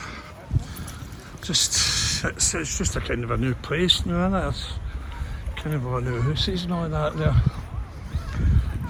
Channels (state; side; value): identical; both; correlation 1.00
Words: it's just a kind of a new place now, isn't it? It's kind of a new houses and all that there.